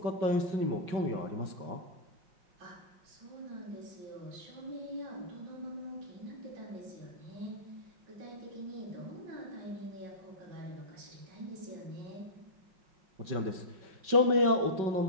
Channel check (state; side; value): late; left; 5.3 ms